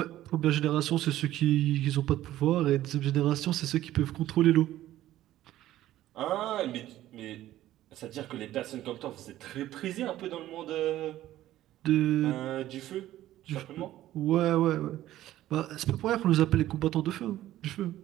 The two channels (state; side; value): quieter; left; 14.0 dB